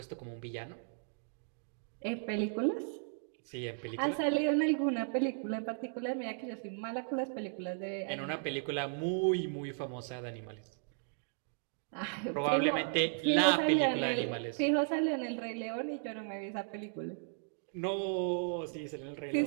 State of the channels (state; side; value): silent; left; digital silence